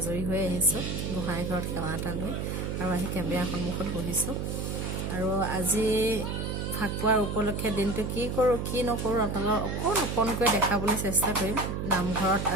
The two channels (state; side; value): noise; right; hum, 3 dB below the sound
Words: হৈ আহিছো গোহাঁই ঘৰত সেৱা এটা লৈ আৰু আহি কেমেৰা সন্মুখত বহিছো আৰু আজি ফাকুৱাৰ উপলক্ষে দিনটো কি কৰো কি নকৰো আপোনালোকক অকণকৈ দেখাবলৈ চেষ্টা কৰিম নামঘৰত